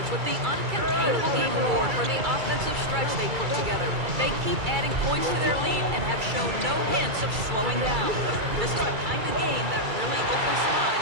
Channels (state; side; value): late; left; 2.3 ms